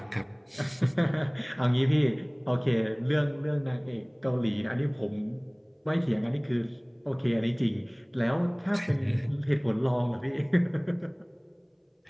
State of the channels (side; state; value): both; identical; correlation 1.00